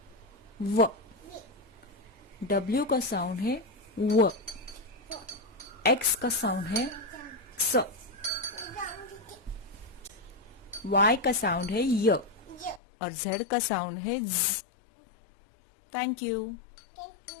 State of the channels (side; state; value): right; drops out; at 12.8 s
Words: व। डब्ल्यू का साउंड है व। एक्स का साउंड है क्स। वाई का साउंड है य। और जेड का साउंड है ज। Thank you.